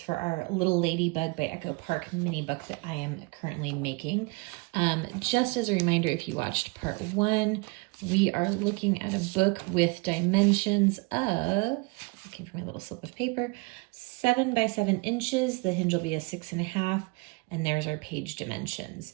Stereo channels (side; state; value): left; quieter; 27.7 dB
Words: our Little Ladybug by Echo Park mini book that I am currently making. Just as a reminder, if you watched part one, we are looking at a book with dimensions of, looking for my little slip of paper, 7 by 7 inches. The hinge will be a 6.5, and there's our page dimensions.